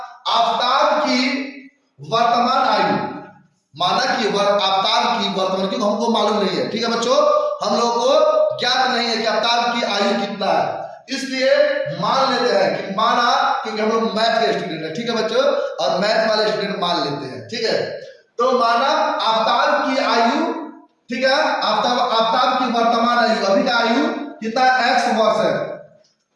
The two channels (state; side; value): identical; both; correlation 1.00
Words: आफ्ताब की वर्तमान आयु, माना कि आफ्ताब की वर्तमान, क्योंकि हमको मालूम नहीं है। ठीक है बच्चों, हम लोगों को ज्ञात नहीं है कि आफ्ताब की आयु कितना है, इसलिए मान लेते हैं कि माना, क्योंकि हम लोग मैथ के स्टूडेंट है। ठीक है बच्चों, और मैथ वाले स्टूडेंट मान लेते हैं। ठीक है, तो माना आफ्ताब की आयु, ठीक है, आफ्ताब की वर्तमान आयु, अभी का आयु कितना, x वर्ष है।